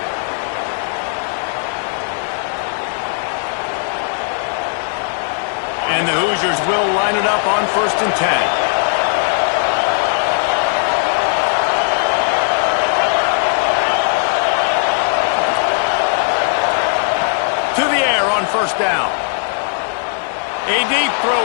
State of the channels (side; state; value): right; silent; digital silence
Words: And the Hoosiers will line it up on 1st and 10. To the air on 1st down. A deep